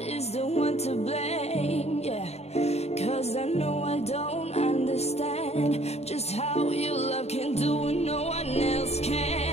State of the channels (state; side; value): late; right; 0.31 ms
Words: the one to blame, yeah. Cause I know I don't understand just how your love can do what no one else